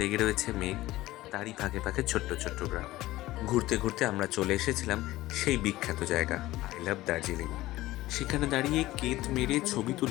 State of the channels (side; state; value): right; quieter; 17.0 dB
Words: রয়েছে মেঘ, তারই ফাঁকে ফাঁকে ছোট্ট ছোট্ট গ্রাম। ঘুরতে ঘুরতে আমরা চলে এসেছিলাম সেই বিখ্যাত জায়গা আই লাভ দার্জিলিং। সেখানে দাঁড়িয়ে কেত মেরে ছবি